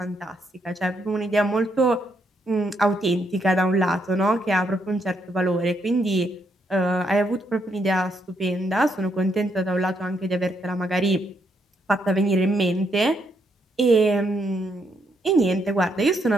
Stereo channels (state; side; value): normal; both; correlation 0.76